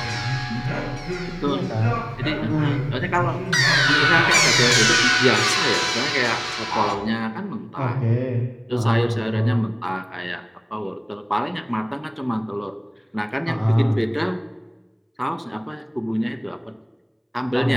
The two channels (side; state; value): both; identical; correlation 1.00